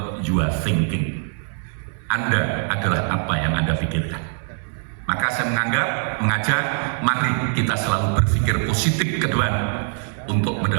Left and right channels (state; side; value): silent; left; 63 dB below the other